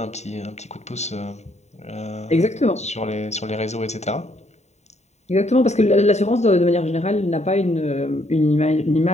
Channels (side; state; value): right; late; 0.32 ms